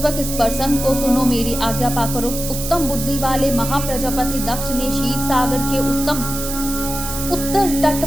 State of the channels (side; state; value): right; noise; hiss, 6 dB below the sound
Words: इस प्रसंग को सुनो, मेरी आज्ञा पाकर उत्तम बुद्धि वाले महाप्रजापति दक्ष ने क्षीर सागर के उत्तर